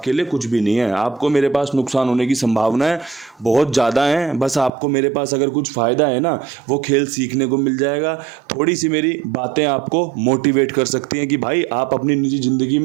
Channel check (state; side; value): drops out; left; at 4.7 s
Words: लिए कुछ भी नहीं है। आपको मेरे पास नुकसान होने की संभावनाएं बहुत ज़्यादा हैं। बस आपको मेरे पास अगर कुछ फ़ायदा है ना, वो खेल सीखने को मिल जाएगा। थोड़ी सी मेरी बातें आपको मोटिवेट कर सकती हैं कि भाई आप अपनी निजी ज़िंदगी